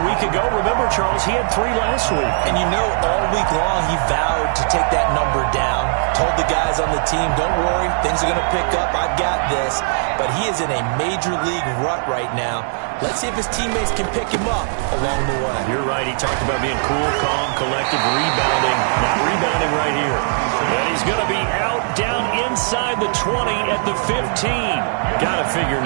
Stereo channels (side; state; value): left; silent; digital silence